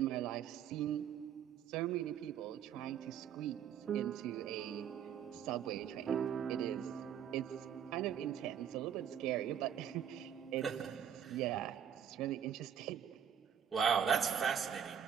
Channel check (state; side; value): quieter; left; 8.8 dB